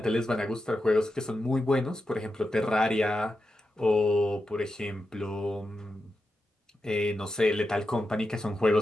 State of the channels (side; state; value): both; normal; correlation 0.88